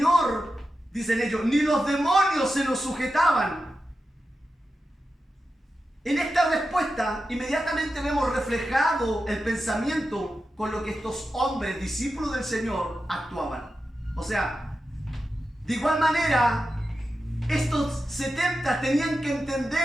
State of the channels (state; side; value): normal; both; correlation 0.91